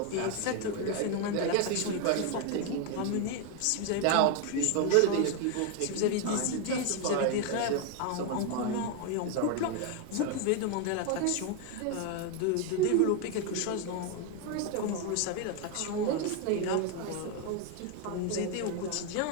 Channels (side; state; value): both; different; correlation 0.01